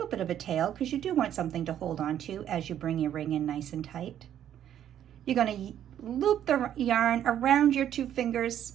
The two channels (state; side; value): quieter; left; 10.5 dB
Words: bit of a tail because you do want something to hold on to as you bring your ring in nice and tight. You're going to loop the yarn around your 2 fingers